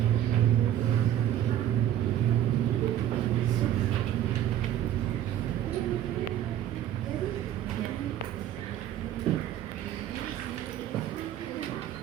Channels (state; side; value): quieter; left; 11.5 dB